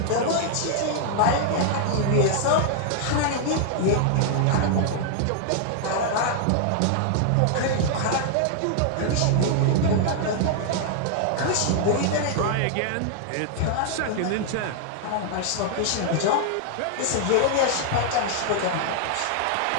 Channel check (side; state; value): both; different; correlation -0.01